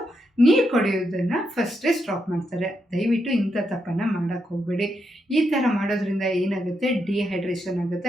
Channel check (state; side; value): normal; both; correlation 0.82